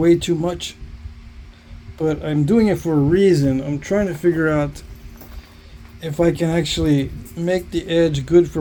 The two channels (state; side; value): identical; both; correlation 1.00